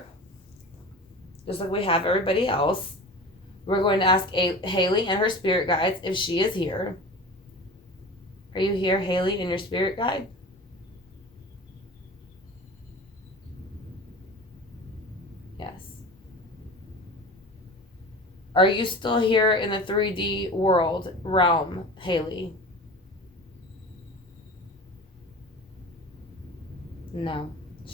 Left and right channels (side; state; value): both; normal; correlation 0.35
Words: Just like we have everybody else. We're going to ask Haleigh and her spirit guides if she is here. Are you here, Haleigh, and your spirit guide? Yes. Are you still here in the 3D world realm, Haleigh? No.